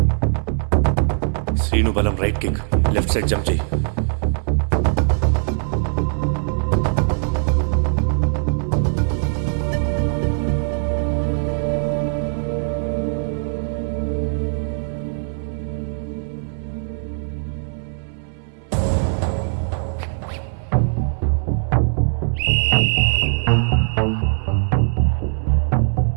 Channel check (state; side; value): silent; left; 65 dB below the other